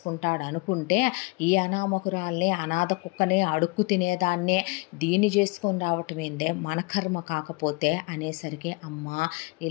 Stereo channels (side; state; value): right; quieter; 26.7 dB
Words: అనుకుంటే, ఈ అనామకురాల్ని అనాథ కుక్కనే అడుక్కు తినేదాన్నే దీన్ని చేసుకొని రావటం ఏందే, మన కర్మ కాకపోతే అనేసరికి, అమ్మ